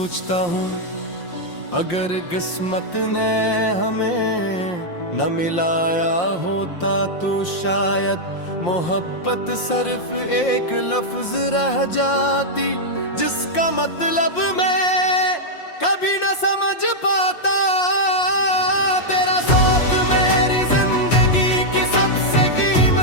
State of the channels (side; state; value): right; late; 5.7 ms